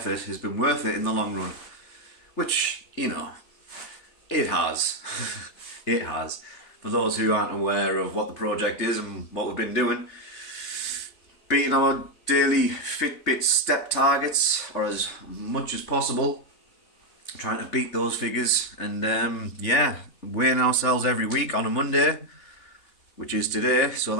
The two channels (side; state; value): right; late; 3.3 ms